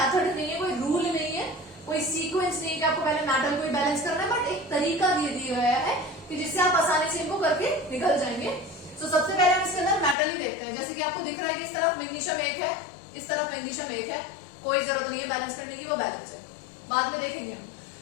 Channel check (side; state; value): right; drops out; at 10.2 s